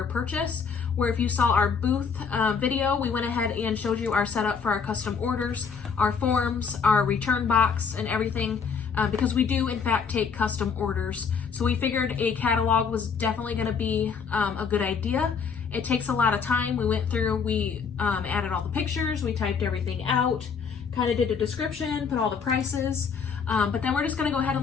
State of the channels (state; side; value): quieter; right; 6.0 dB